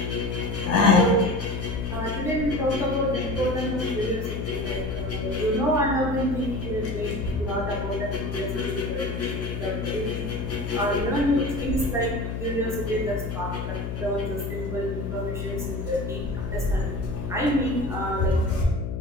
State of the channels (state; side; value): noise; left; hum, 4 dB below the sound